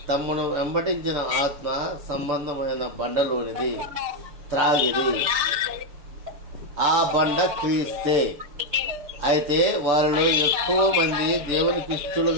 తమను వెంబడించిన ఆత్మ సంబంధమైన బండలోనిది త్రాగిరి. ఆ బండ క్రీస్తే. అయితే వారిలో ఎక్కువ మంది దేవునికి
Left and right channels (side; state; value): left; late; 6.6 ms